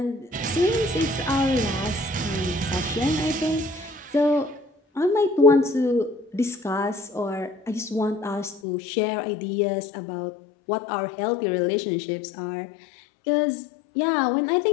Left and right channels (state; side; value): drops out; right; at 8.6 s